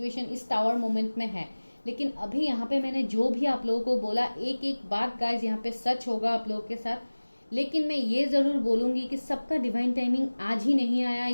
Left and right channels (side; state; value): both; inverted; correlation -1.00